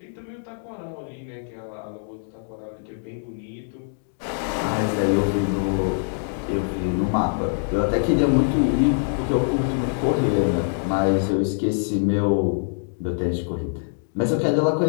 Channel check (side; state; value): right; silent; digital silence